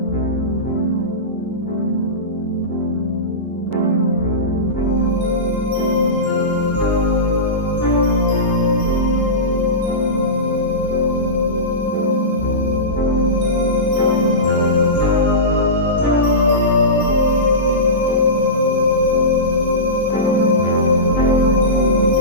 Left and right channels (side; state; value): both; normal; correlation -0.19